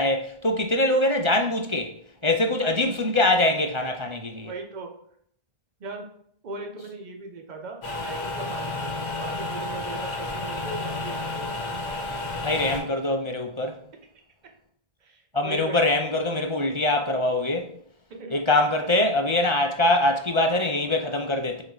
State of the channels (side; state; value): left; late; 1.3 ms